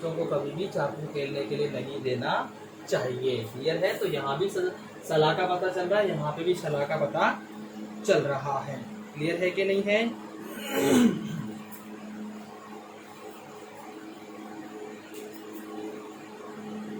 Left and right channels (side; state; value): both; identical; correlation 1.00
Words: को कभी भी चाकू खेलने के लिए नहीं देना चाहिए। क्लियर है? तो यहाँ भी सलाह का पता चल रहा है, यहाँ पे भी सलाह का पता चल रहा है। क्लियर है कि नहीं है?